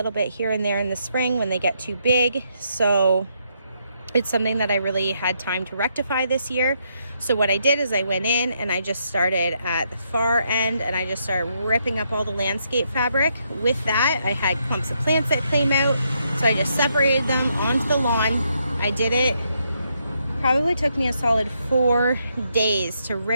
bit here and there in the spring when they get too big. So it's something that I really had time to rectify this year. So what I did is I went in and I just started at the far end and I just started ripping up all the landscape fabric. With that, I had clumps of plants that came out. So I just separated them onto the lawn. I did it. Probably took me a solid 4 days to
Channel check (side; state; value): both; inverted; correlation -0.77